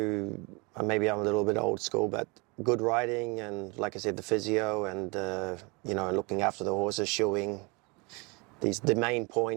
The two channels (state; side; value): quieter; left; 28.6 dB